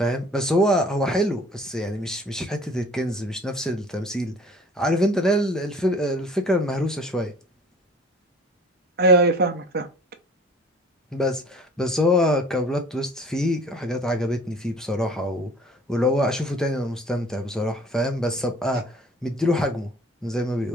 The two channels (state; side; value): normal; both; correlation 0.49